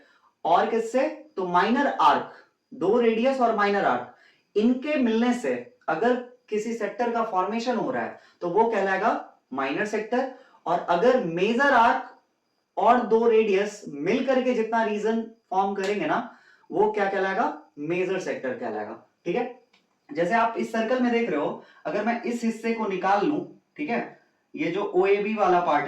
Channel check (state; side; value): identical; both; correlation 1.00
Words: और किससे, तो माइनर आर्क, दो रेडियस और माइनर आर्क, इनके मिलने से अगर किसी सेक्टर का फॉर्मेशन हो रहा है तो वो कहलाएगा माइनर सेक्टर। और अगर मेजर आर्क और दो रेडियस मिलकर के जितना रीजन फॉर्म करेंगे ना, वो क्या कहलाएगा, मेजर सेक्टर कहलाएगा। ठीक है, जैसे आप इस सर्कल में देख रहे हो, अगर मैं इस हिस्से को निकाल लूं, ठीक है, ये जो OAB वाला पार्ट